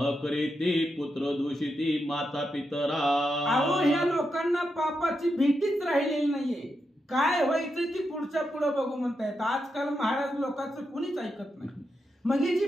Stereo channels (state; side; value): normal; both; correlation 0.85